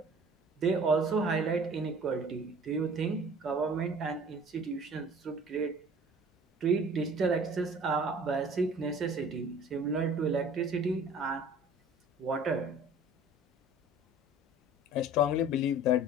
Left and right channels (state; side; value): normal; both; correlation 0.47